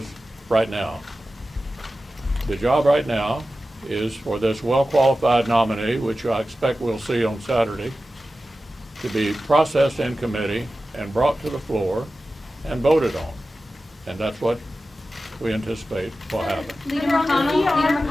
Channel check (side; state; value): both; normal; correlation 0.94